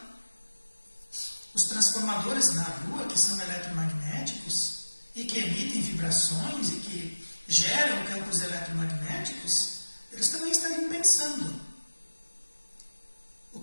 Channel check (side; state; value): both; inverted; correlation -1.00